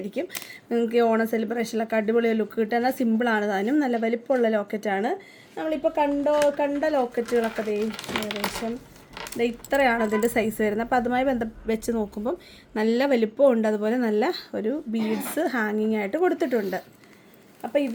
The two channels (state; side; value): identical; both; correlation 1.00